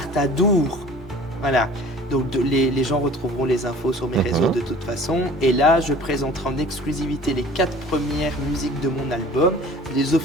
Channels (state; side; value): normal; both; correlation 0.46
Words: à Dour. Voilà. Donc les gens retrouveront les infos sur mes réseaux de toute façon. Et là, je présenterai en exclusivité les 4 premières musiques de mon album, les